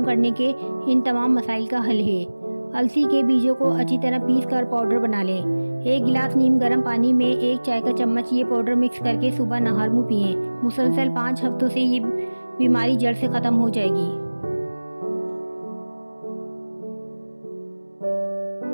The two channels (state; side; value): inverted; both; correlation -1.00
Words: करने के इन तमाम मसाइल का हल है। अलसी के बीजों को अच्छी तरह पीस कर पाउडर बना लें। 1 गिलास नीम गर्म पानी में 1 चाय का चम्मच ये पाउडर मिक्स करके सुबह नहर मुँह पिएँ। मुसलसल 5 हफ्तों से ये बीमारी जड़ से ख़त्म हो जाएगी।